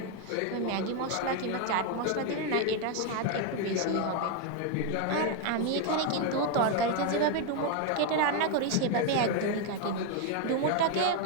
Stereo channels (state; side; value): different; both; correlation 0.01